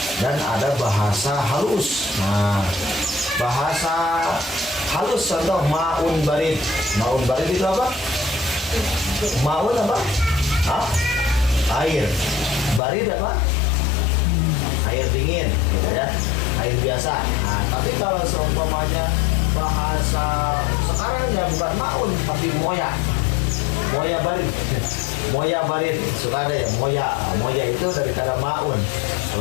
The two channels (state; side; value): drops out; right; at 12.8 s